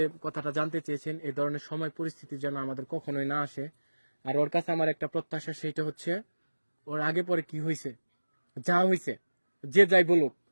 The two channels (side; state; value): both; inverted; correlation -1.00